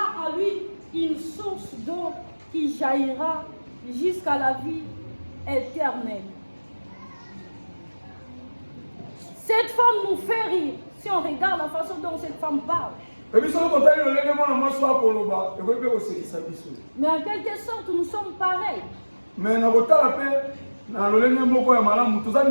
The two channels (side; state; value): both; inverted; correlation -1.00